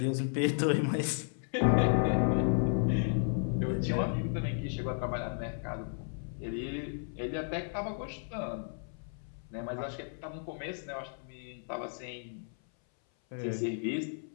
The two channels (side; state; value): right; silent; 55 dB below the other